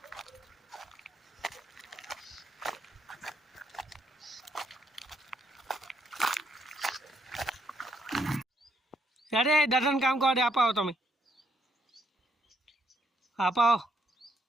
અરે દાદાને કામ કરો દે આપાવો તમે આપાવો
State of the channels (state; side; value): normal; both; correlation 0.73